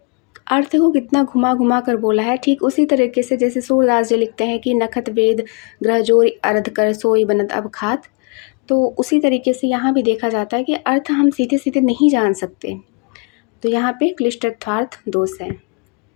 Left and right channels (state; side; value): quieter; right; 32.4 dB